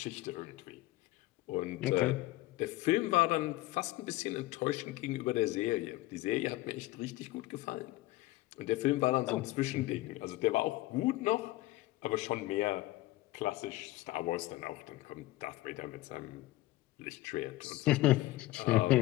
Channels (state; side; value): quieter; right; 18.0 dB